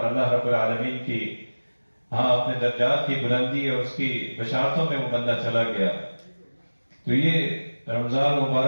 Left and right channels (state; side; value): inverted; both; correlation -1.00